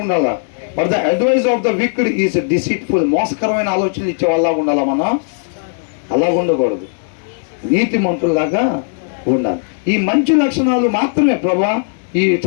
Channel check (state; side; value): silent; right; digital silence